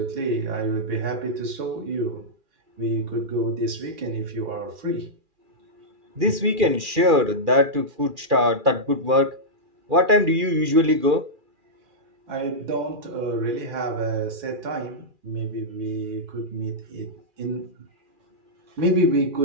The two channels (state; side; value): late; left; 2.4 ms